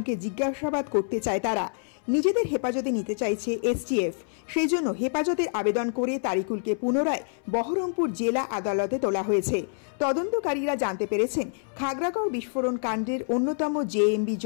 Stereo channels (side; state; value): right; silent; 60 dB below the other